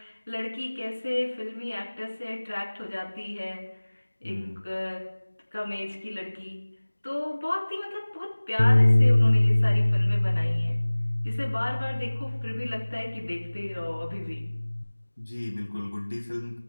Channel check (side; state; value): both; inverted; correlation -1.00